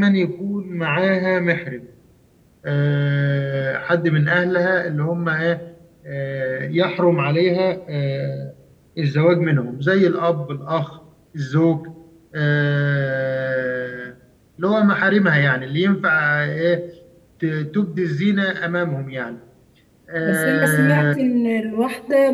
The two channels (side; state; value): both; identical; correlation 1.00